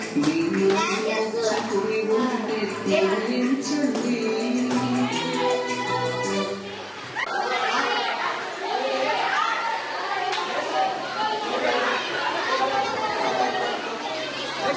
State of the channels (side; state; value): both; identical; correlation 1.00